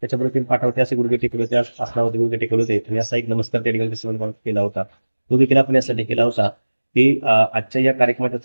त्याच्याबरोबर 3 पाठावरती असे गुडघे टेकले होते, आसनावरती गुडघे टेकले होते आणि असा एक नमस्कार त्या ठिकाणी केला होता. तो देखील आपण यासाठी केला होता की आजच्या या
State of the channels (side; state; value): both; inverted; correlation -1.00